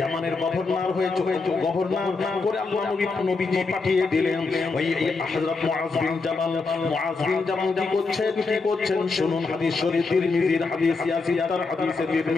গভর্নর হয়ে গভর্নর করে আল্লাহ নবীজি পাঠিয়ে দিলেন। ওই হযরত মুআয বিন জাবাল কি করছেন শুনুন। হাদিস শরীফ তিরমিজির হাদিস, ইয়াসির হাদিসে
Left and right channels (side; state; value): right; quieter; 4.1 dB